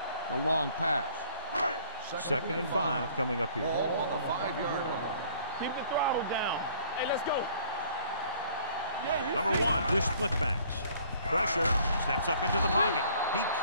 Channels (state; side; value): inverted; both; correlation -0.56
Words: the long pass. Second and 5 coming up here. Ball on the 5-yard line. Keep the throttle down. Hey, let's go. Number 1 with split backs. Pressure, steps up into the pocket. He